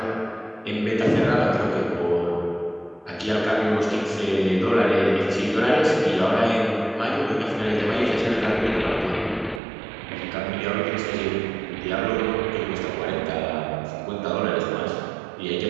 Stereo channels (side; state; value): left; drops out; at 9.6 s